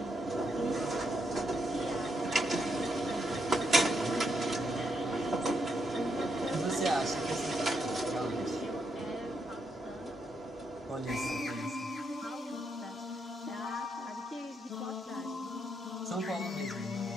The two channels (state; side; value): normal; both; correlation 0.79